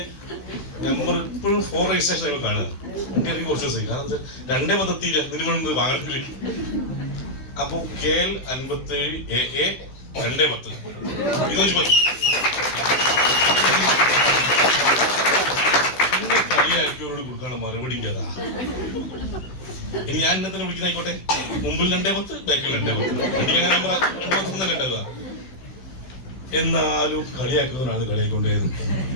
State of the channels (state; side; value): late; right; 16 ms